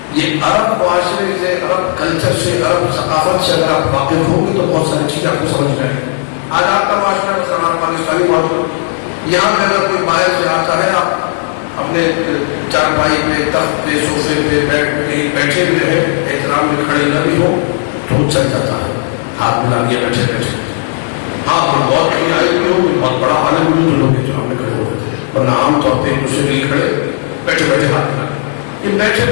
یہ عرب معاشرے سے عرب کلچر سے عرب ثقافت سے اگر آپ واقف ہوں گے تو بہت ساری چیزیں آپ کو سمجھ جائیں گے آج آپ کا معاشرہ مسلمان پاکستانی معاشرہ یہاں پہ اگر کوئی باہر سے آتا ہے آپ اپنے چارپائی پہ تخت پہ سوفے پہ بیٹھے ہوئے ہیں احترام میں کھڑے نہ بھی ہو تو چل جاتا ہے ہاتھ ملا دیا بیٹھے بیٹھے ہاں ہم بہت کہیں آئے ہوئے ہوں بہت بڑا عالم ہوں لوگ کے سامنے کھڑے ہوتے ورنہ عام طور پہ دوسرے مل کھڑے بیٹھے بیٹھے ہاتھ ملا یہ بیٹھے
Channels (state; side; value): silent; right; 72 dB below the other